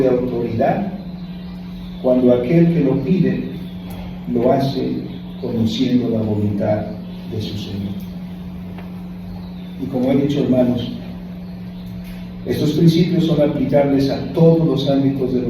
autoridad cuando aquel que lo pide lo hace conociendo la voluntad de su Señor. Y como he dicho, hermanos, estos principios son aplicables a todos los ámbitos de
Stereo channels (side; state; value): both; identical; correlation 1.00